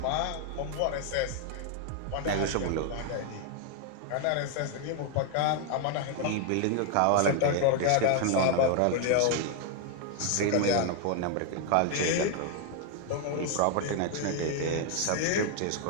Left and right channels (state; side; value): different; both; correlation 0.00